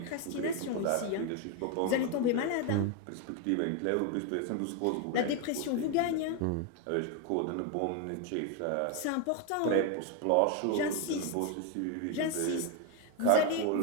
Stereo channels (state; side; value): different; both; correlation 0.01